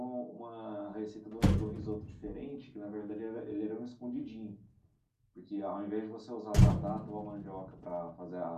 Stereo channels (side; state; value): both; identical; correlation 1.00